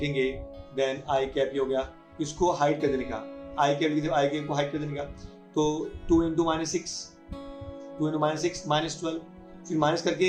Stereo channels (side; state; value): both; identical; correlation 1.00